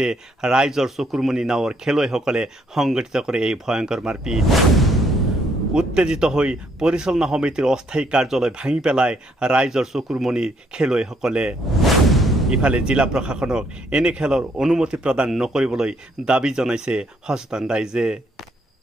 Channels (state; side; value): normal; both; correlation 0.70